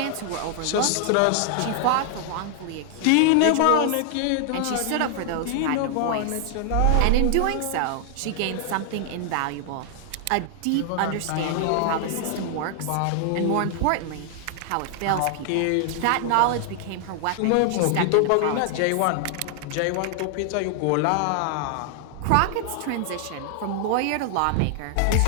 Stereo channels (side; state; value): both; different; correlation 0.00